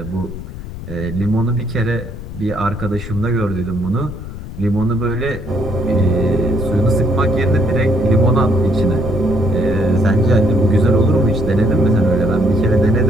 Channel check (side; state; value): left; noise; rumble, 10 dB below the sound